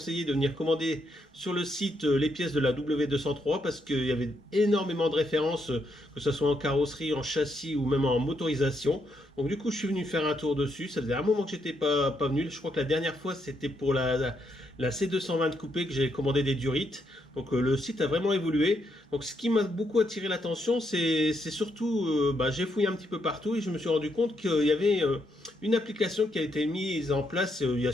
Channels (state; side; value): normal; both; correlation 0.78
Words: de venir commander sur le site les pièces de la W203, parce qu'il y avait énormément de références, que ce soit en carrosserie, en châssis ou même en motorisation. Donc, du coup, je suis venu faire un tour dessus. Ça faisait un moment que j'étais pas venu. Je crois que la dernière fois, c'était pour la C220 coupée que j'ai commandé des durites. Le site a vraiment évolué. Donc ce qui m'a beaucoup attiré l'attention, c'est surtout, j'ai fouillé un petit peu partout et je me suis rendu compte qu'il y avait une application qui a été mise en place il n'y a